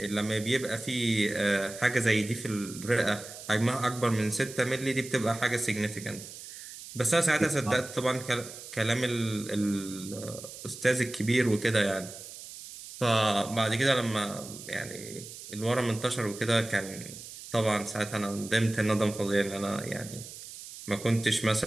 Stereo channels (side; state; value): right; noise; hiss, 13 dB below the sound